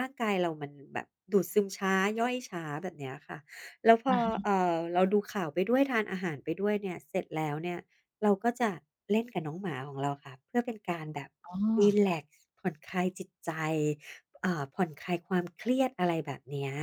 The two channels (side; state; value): both; identical; correlation 1.00